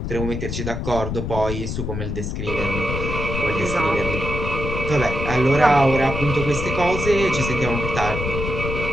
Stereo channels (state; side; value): noise; left; rumble, 4 dB below the sound